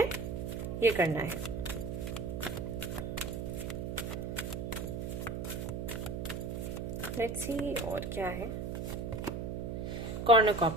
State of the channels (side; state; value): right; noise; hum, 4 dB below the sound